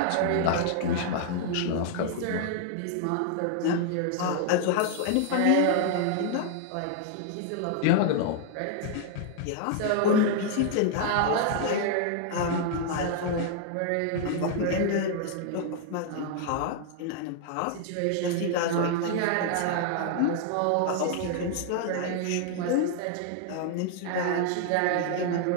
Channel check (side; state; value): both; different; correlation 0.00